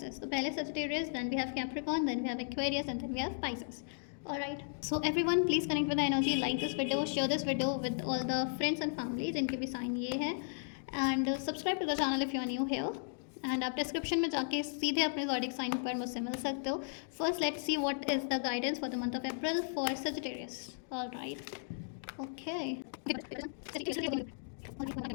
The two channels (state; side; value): silent; right; digital silence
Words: तो पहले Sagittarius, then we have Capricorn, then we have Aquarius and then we have Pisces. Alright, so everyone please connect with the energy, like this video, share this video with all the friends and family जिनके भी sign ये है, and subscribe to the channel if you are new here. And आप description में जाके सीधे अपने zodiac sign पर मुझसे मिल सकते हो। First let's see what is the guidance for the month of April for Sagittarius. Alright, okay.